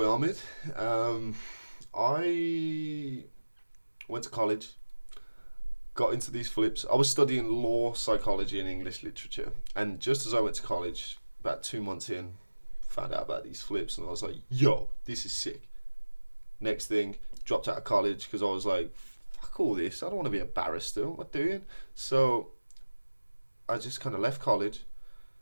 Omid. I went to college. Got into these flips. I was studying law, psychology, and English literature. And just as I went to college, about 2 months in, found out about these flips, and I was like, yo, this is sick. Next thing, dropped out of college because I was like, fuck all this. I don't want to be a barrister. What am I doing? So I just kind of left college.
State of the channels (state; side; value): inverted; both; correlation -1.00